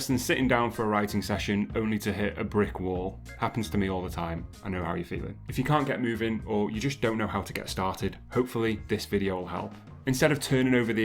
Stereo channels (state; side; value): identical; both; correlation 1.00